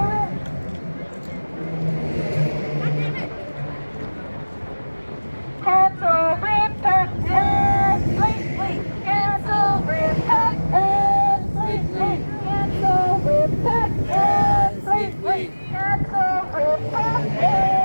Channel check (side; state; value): both; inverted; correlation -1.00